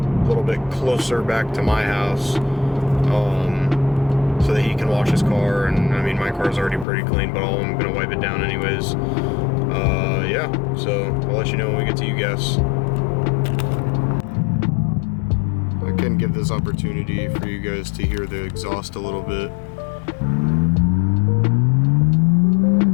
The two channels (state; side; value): drops out; right; at 6.9 s